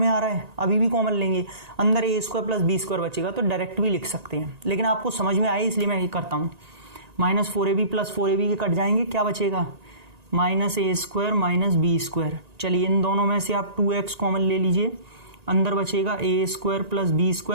आ रहा है, अभी भी कॉमन लेंगे, अंदर a² प्लस b² बचेगा, तो डायरेक्ट भी लिख सकते हैं, लेकिन आपको समझ में आए इसलिए मैं ये करता हूँ। -4ab प्लस 4ab के कट जाएंगे, क्या बचेगा -a² माइनस b²। चलिए इन दोनों में से आप 2x कॉमन ले लीजिए, अंदर बचेगा a² प्लस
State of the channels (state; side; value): late; left; 1.9 ms